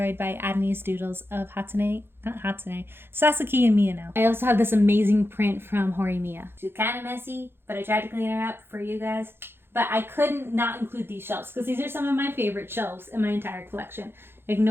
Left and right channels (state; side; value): late; left; 0.11 ms